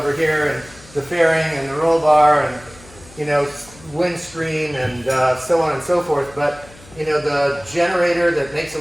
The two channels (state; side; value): noise; left; hum, 23 dB below the sound